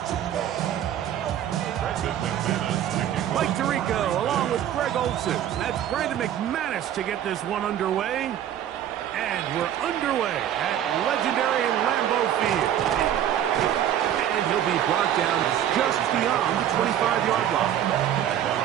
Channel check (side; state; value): left; quieter; 10.7 dB